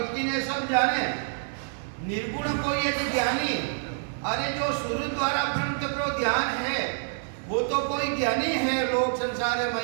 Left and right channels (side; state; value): left; silent; 60 dB below the other